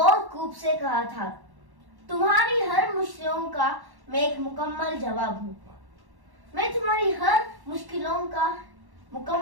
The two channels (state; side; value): late; left; 1.1 ms